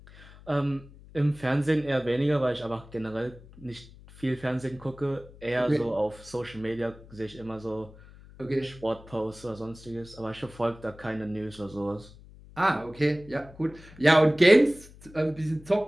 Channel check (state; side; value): noise; left; hum, 21 dB below the sound